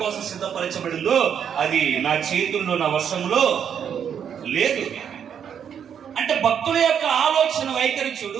కోసం సిద్ధపరచబడిందో అది నా చేతుల్లో నా వశంలో లేదు. భక్తుల యొక్క ఆలోచన వైఖరి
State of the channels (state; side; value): quieter; left; 8.2 dB